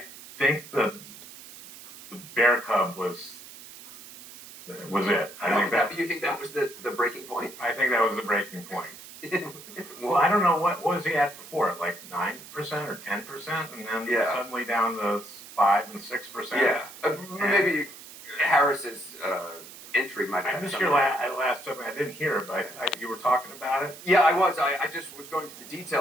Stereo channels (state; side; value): noise; right; hiss, 16 dB below the sound